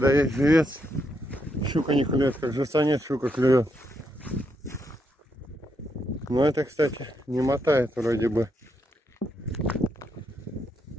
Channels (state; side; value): normal; both; correlation 0.79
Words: есть живец, щука не клюет, как живца нет, щука клюет. Но это, кстати, не мотает вроде бы.